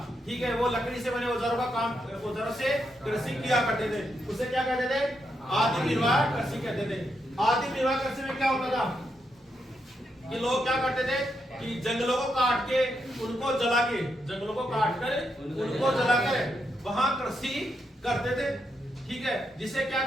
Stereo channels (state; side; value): normal; both; correlation 0.82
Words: ठीक है, वो लकड़ी से बने औजारों का काम, औजारों से कृषि किया करते थे। उसे क्या कहते थे? आदि निर्वाह कृषि कहते थे। आदि निर्वाह कृषि में क्या होता था कि लोग क्या करते थे कि जंगलों को काट के उनको जला के, जंगलों को काट कर उनको जलाकर वहां कृषि करते थे। ठीक है, जिसे क्या